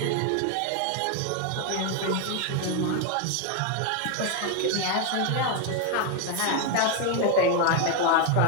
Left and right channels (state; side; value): different; both; correlation 0.01